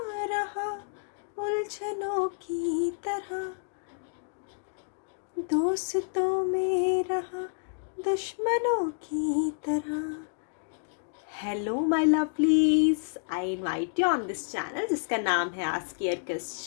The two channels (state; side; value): silent; right; digital silence